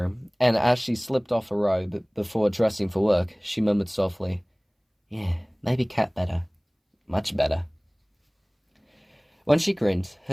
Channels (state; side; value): identical; both; correlation 1.00